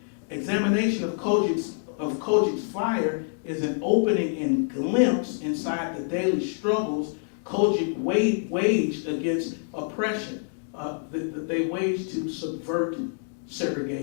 Examination of COGIC's fire is an opening and glimpse inside the daily struggles COGIC waged against oppression, that they waged to subvert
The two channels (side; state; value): right; silent; digital silence